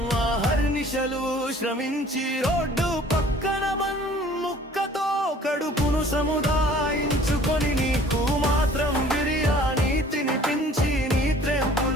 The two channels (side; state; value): both; normal; correlation 0.52